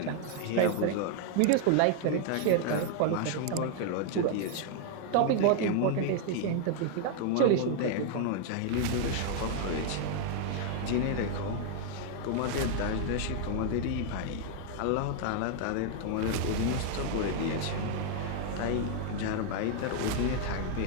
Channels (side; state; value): both; different; correlation 0.00